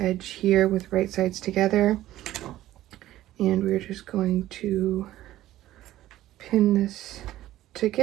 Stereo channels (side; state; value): left; quieter; 14.5 dB